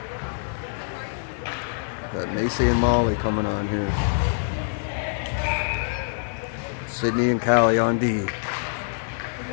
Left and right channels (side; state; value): right; silent; digital silence